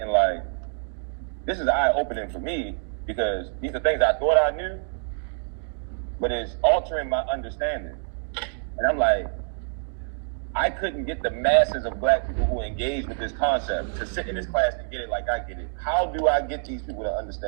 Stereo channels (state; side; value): silent; left; digital silence